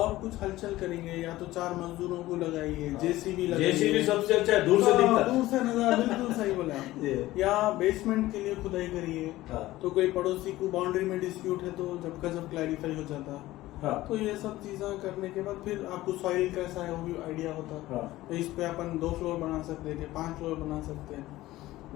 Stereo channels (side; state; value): right; quieter; 16.7 dB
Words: कुछ हलचल करेंगे, या तो 4 मजदूरों को लगाइए, JCB लगाइए। JCB सबसे अच्छा है, दूर से दिखता है। दूर से नजर, बिल्कुल सही बोले आप। ये। या बेसमेंट के लिए खुदाई करिए, हाँ तो कोई पड़ोसी को बाउंड्री में डिस्प्यूट है तो जब का जब क्लैरिफाई हो जाता। हाँ तो ये सब चीजें करने के बाद फिर आपको सॉइल कैसा है वो भी आइडिया होता। हाँ तो इस पे अपन 2 फ्लोर बना सकते हैं, 5 फ्लोर बना सकते हैं।